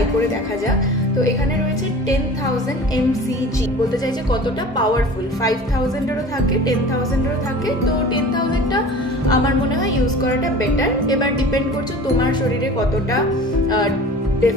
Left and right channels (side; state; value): both; normal; correlation 0.40